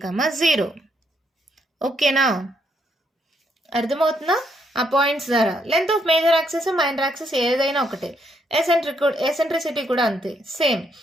ఓకేనా, అర్థమవుతుందా. ఆ పాయింట్స్ ద్వారా length of major axis minor axis ఏదైనా ఒకటే. ఎసెంట్రిసిటీ కూడా అంతే, same.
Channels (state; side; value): normal; both; correlation 0.74